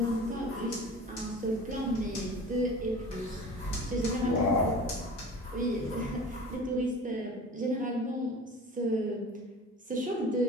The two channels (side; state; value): both; normal; correlation 0.39